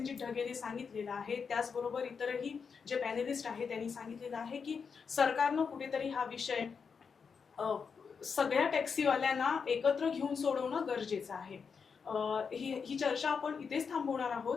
ढगेने सांगितलेलं आहे. त्याचबरोबर इतरही जे पॅनेलिस्ट आहेत त्यांनी सांगितलेलं आहे की सरकारनं कुठेतरी हा विषय सगळ्या टॅक्सीवाल्यांना एकत्र घेऊन सोडवणं गरजेचं आहे. ही चर्चा आपण इथेच थांबवणार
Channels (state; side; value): quieter; right; 5.9 dB